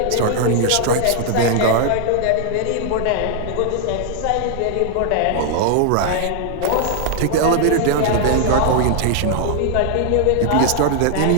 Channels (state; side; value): different; both; correlation 0.00